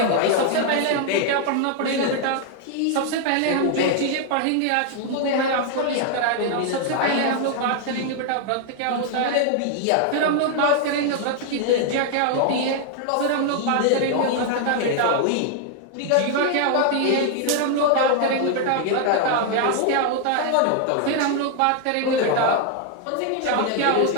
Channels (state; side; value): different; both; correlation 0.00